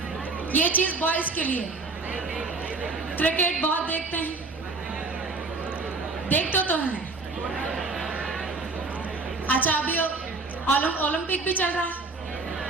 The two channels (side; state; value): left; quieter; 3.7 dB